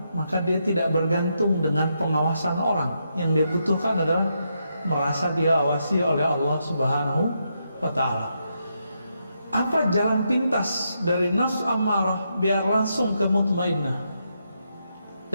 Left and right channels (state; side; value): inverted; both; correlation -0.81